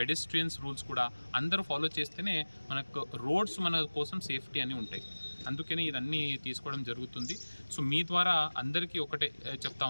రూల్స్ కూడా అందరూ ఫాలో చేస్తేనే మనకు రోడ్స్ మన కోసం సేఫ్టీ అని ఉంటాయి. అందుకని ఇదన్నీ తీసుకోవడం జరుగుతుంది. సో మీ ద్వారా అందరికీ ఒకటే చెప్తా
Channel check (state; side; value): inverted; both; correlation -1.00